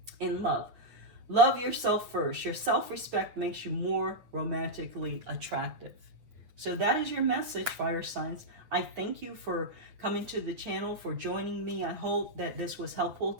in love. Love yourself first. Your self-respect makes you more romantically attractive. So that is your message, fire signs. I thank you for coming to the channel, for joining me. I hope that this was helpful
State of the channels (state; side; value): late; left; 8.9 ms